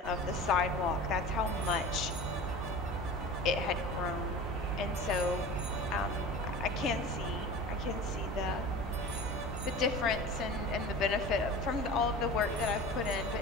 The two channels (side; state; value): both; normal; correlation 0.35